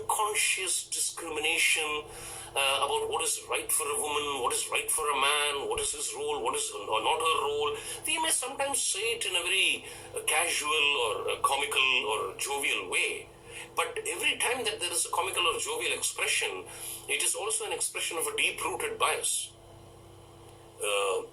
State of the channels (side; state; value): both; identical; correlation 1.00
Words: discrimination about what is right for a woman, what is right for a man, what is his role, what is not her role. They may sometimes say it in a very casual or comical or jovial way. But every time that there is a comical or jovial expression, it is also an expression of a deep-rooted bias.